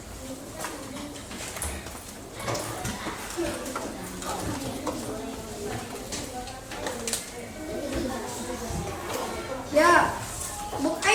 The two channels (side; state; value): both; identical; correlation 1.00